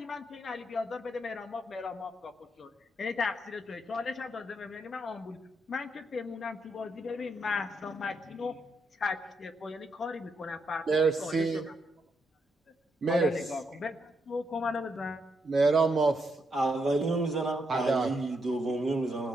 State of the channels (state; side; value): normal; both; correlation 0.79